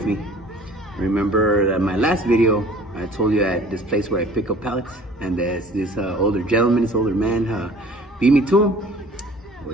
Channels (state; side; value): normal; both; correlation 0.50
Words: me. Remember that my last video, I told you at this place where I pick up pallets, and this older gentleman, this older man, beat me to him. Well,